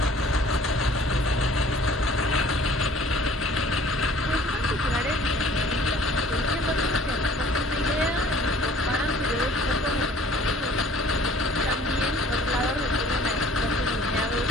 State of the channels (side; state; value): both; normal; correlation 0.52